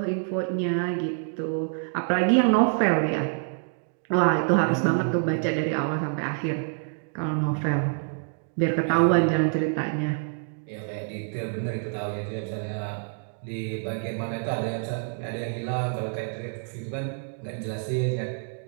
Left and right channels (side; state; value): left; silent; 56 dB below the other